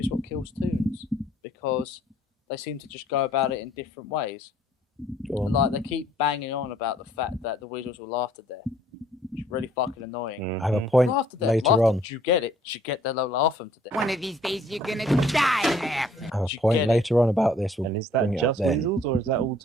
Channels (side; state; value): both; normal; correlation 0.60